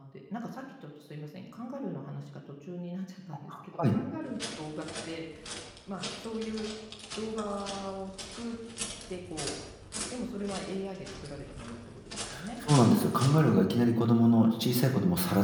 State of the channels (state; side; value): identical; both; correlation 1.00